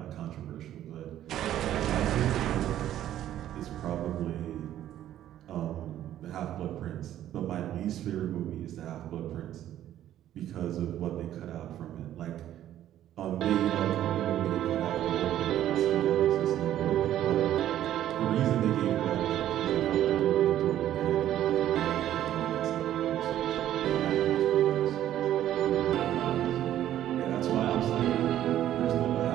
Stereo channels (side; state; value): left; quieter; 12.1 dB